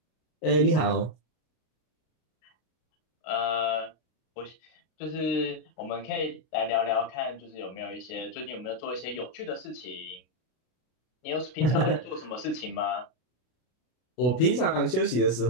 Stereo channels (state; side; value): late; right; 32 ms